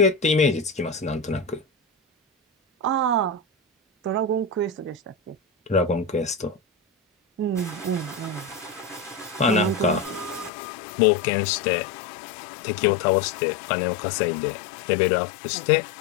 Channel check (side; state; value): right; drops out; at 10.5 s